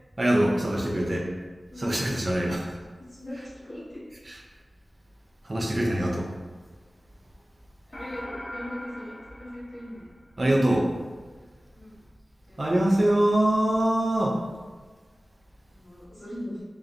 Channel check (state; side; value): normal; both; correlation 0.97